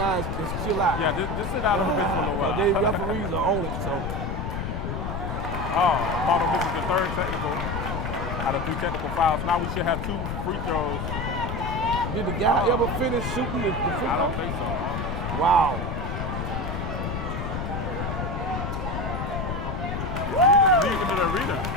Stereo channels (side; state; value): left; noise; rumble, 3 dB below the sound